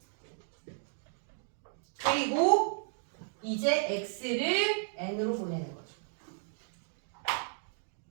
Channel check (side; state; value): left; silent; digital silence